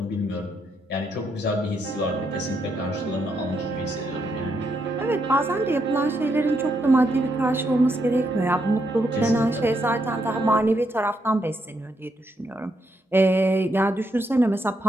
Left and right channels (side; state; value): both; normal; correlation 0.78